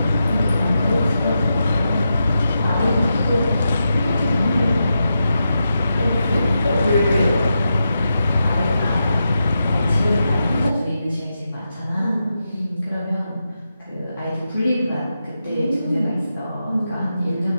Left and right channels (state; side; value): inverted; both; correlation -0.88